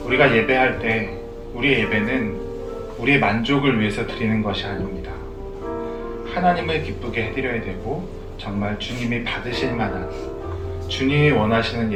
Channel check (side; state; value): both; identical; correlation 1.00